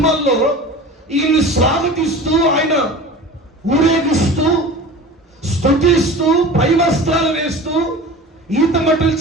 ఈయన్ని స్వాగతిస్తూ, ఆయన ఊరేగిస్తూ, స్తుతిస్తూ, పై వస్త్రాలు వేస్తూ, ఈతమట్టుల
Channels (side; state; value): both; normal; correlation 0.37